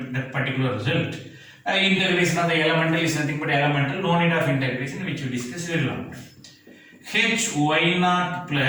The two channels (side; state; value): both; identical; correlation 1.00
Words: that particular result. Integration of the elemental is nothing but elemental, no need of integration, which we discussed very long time. Hy naught